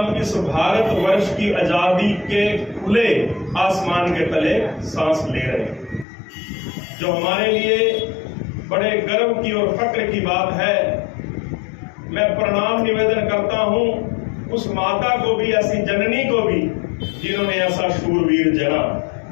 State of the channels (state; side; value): drops out; right; at 6.1 s